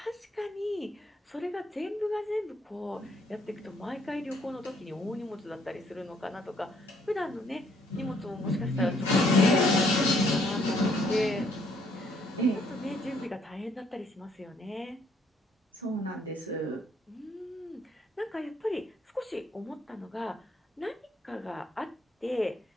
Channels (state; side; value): normal; both; correlation 0.67